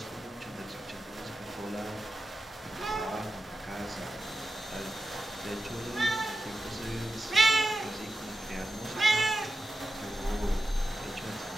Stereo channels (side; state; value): both; normal; correlation 0.90